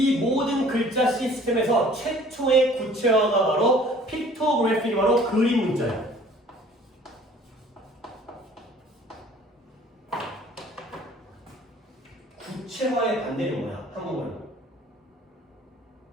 모든 글자 시스템에서 최초의 구체화가 바로 픽토그래피가 바로 그림 문자예요. 구체화의 반대는 뭐야? 한국말로.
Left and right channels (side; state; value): both; normal; correlation 0.52